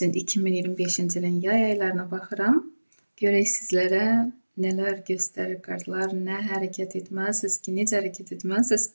2025-ci ilin yay aylarına baxıram. Görək sizlərə nələr göstərir kartlar, nə hərəkət etməlisiniz ki, necə hərəkət etməlisiniz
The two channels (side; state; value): both; inverted; correlation -1.00